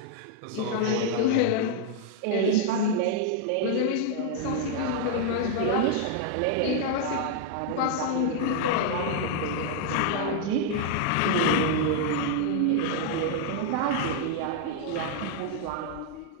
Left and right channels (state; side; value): different; both; correlation 0.00